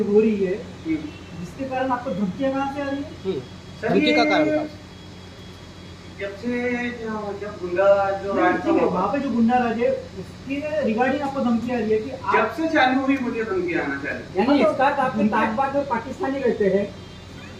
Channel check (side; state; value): both; identical; correlation 1.00